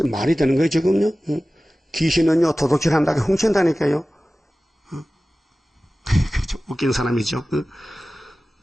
말이 되는 거예요 지금요. 귀신은요 도둑질한다고 훔친다니까요. 웃긴 사람이죠.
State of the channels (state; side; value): normal; both; correlation 0.96